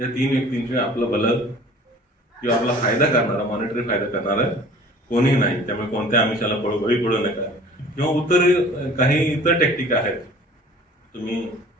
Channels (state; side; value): normal; both; correlation 0.48